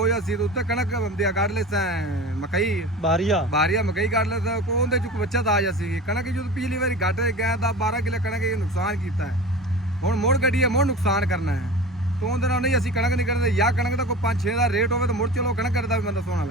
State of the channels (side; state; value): both; normal; correlation 0.34